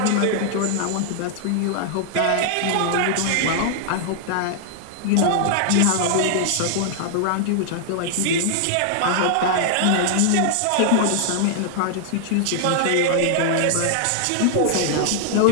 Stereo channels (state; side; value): different; both; correlation -0.01